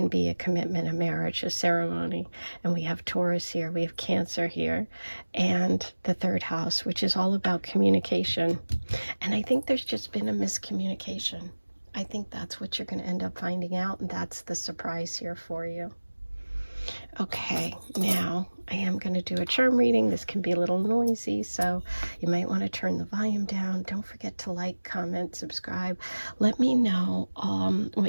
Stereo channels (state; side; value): inverted; both; correlation -1.00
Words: be a commitment, a marriage, a ceremony. And we have Taurus here. We have Cancer here, and the third house, which is all about communication. And I think there's just been a miscommunication. I think that's what you're going to end up finding out, and that's the surprise here for you. Okay, now I am going to do a charm reading. This can be a little noisy, so you might want to turn the volume down. Don't forget to like, comment, subscribe. Let me know